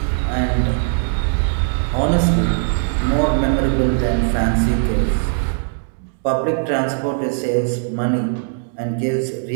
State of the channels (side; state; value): left; silent; digital silence